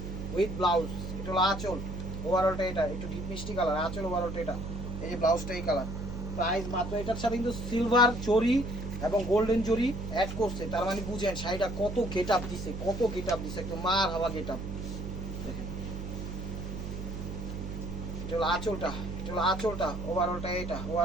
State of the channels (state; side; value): noise; right; hum, 6 dB below the sound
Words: with blouse. এটা হলো আঁচল ওভারঅলটা এটা, একটু ডিপ মিষ্টি কালার। আঁচল ওভারঅলটা এটা, এই যে ব্লাউজটা এই কালার। প্রাইস মাত্র, এটার সাথে কিন্তু সিলভার জরি এবং গোল্ডেন জরি অ্যাড করছে, তার মানে বুঝেন শাড়িটা কত গেট আপ দিছে, কত গেট আপ দিছে, একটু মার হাওয়া গেট আপ। এটা হলো আঁচলটা, এটা হলো আঁচলটা ওভারঅলটা এটা,